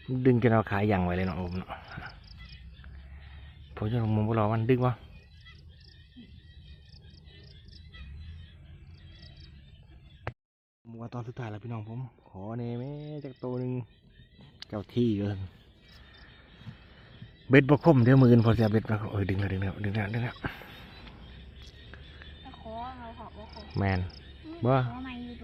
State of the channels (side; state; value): both; identical; correlation 1.00